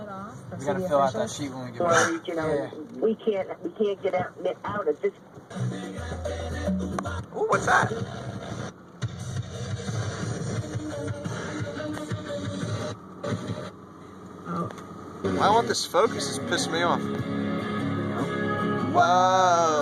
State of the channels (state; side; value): identical; both; correlation 1.00